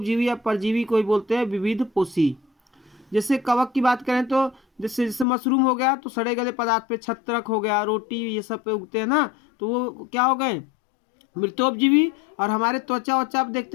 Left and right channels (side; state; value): right; drops out; at 5.2 s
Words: या परजीवी को ही बोलते हैं विविध पोषी। जैसे कवक की बात करें तो जैसे मशरूम हो गया तो सड़े गले पदार्थ पे, छत्रक हो गया, रोटी, ये सब पे उगते हैं ना, तो वो क्या हो गए? मृतोपजीवी। और हमारे त्वचा वचा आप